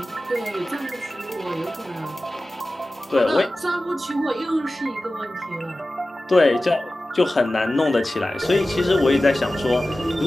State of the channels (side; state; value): both; normal; correlation 0.96